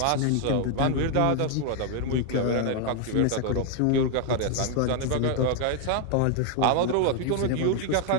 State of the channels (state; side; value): different; both; correlation 0.01